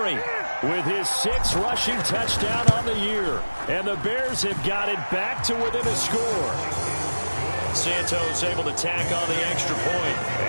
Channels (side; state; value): both; inverted; correlation -1.00